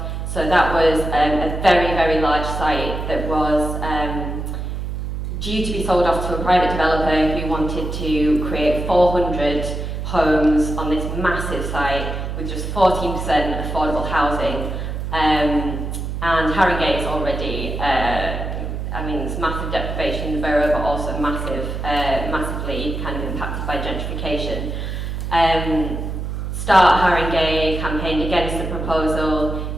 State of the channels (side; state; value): right; noise; hum, 4 dB below the sound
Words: So that was a very, very large site that was due to be sold off to a private developer who wanted to create 400 homes on this massive site with just 14% affordable housing. And Haringey is already, it's massive deprivation in the borough, but also massively kind of impacted by gentrification. Start Haringey campaigned against the proposal.